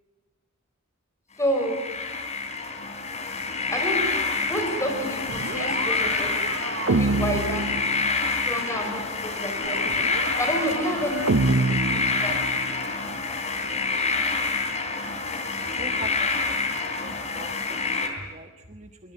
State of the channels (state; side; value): normal; both; correlation 0.05